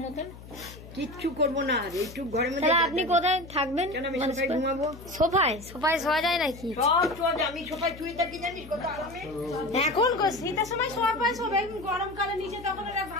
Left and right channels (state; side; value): noise; left; hum, 16 dB below the sound